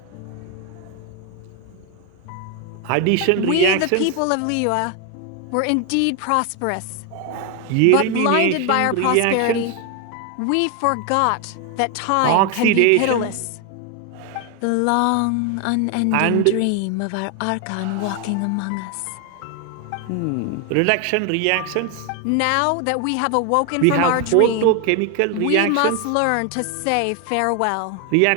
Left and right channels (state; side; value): different; both; correlation 0.01